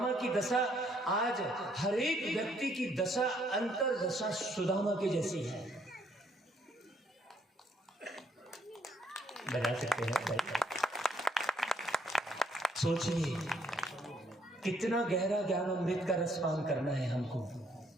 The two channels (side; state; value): both; normal; correlation 0.69